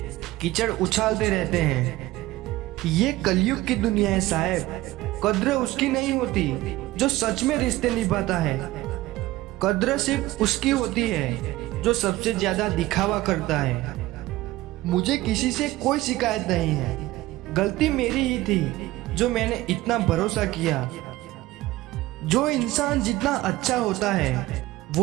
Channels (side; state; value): left; quieter; 17.4 dB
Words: कीचड़ उछालते रहते हैं। ये कलयुग की दुनिया है साहब। कद्र उसकी नहीं होती जो सच में रिश्ते निभाता है। कद्र सिर्फ उसकी होती है जो सबसे ज्यादा दिखावा करता है। मुझे किसी से कोई शिकायत नहीं है, गलती मेरी ही थी जो मैंने इतना भरोसा किया। जो इंसान जितना अच्छा होता है